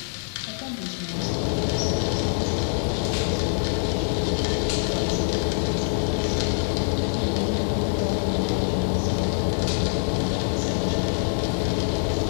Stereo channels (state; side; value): silent; right; 62 dB below the other